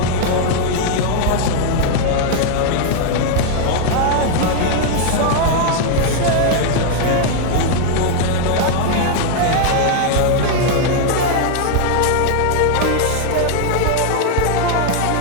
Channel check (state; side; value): different; both; correlation 0.00